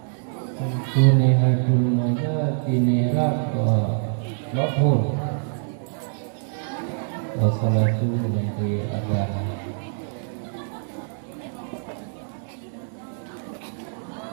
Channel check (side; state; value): left; silent; digital silence